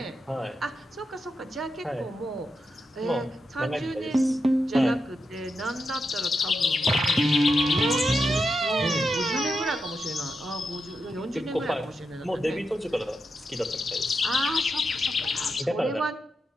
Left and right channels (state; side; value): normal; both; correlation 0.86